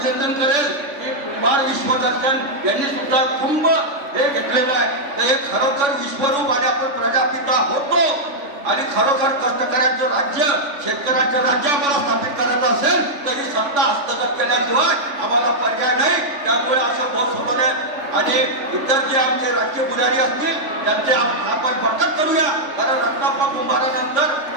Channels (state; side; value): late; left; 3.5 ms